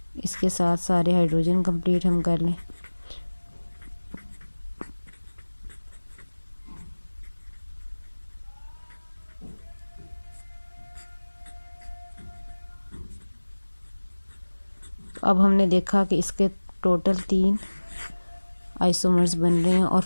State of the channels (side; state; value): both; inverted; correlation -1.00